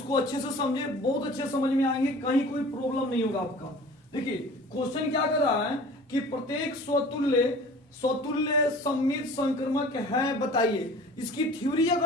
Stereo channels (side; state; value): both; normal; correlation 0.43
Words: अच्छे से समझे, बहुत अच्छे समझ में आएंगे, कहीं कोई प्रॉब्लम नहीं होगा आपका। देखिए क्वेश्चन क्या कर रहा है कि प्रत्येक स्वतुल्य सममित संक्रमक है, बताइए। इसकी थ्योरी